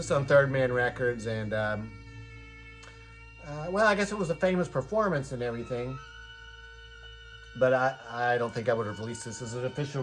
is on Third Man Records, and well, I guess it was a famous performance and everything, but I don't think I would have released this as an official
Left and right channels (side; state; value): both; identical; correlation 1.00